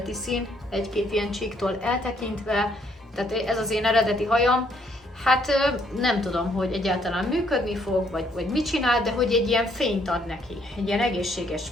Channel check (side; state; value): both; normal; correlation 0.68